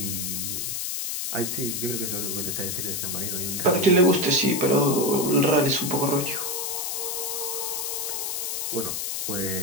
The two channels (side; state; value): left; noise; hiss, 2 dB below the sound